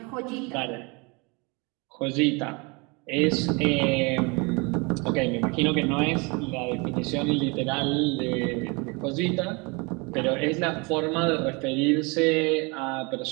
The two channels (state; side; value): quieter; left; 28.9 dB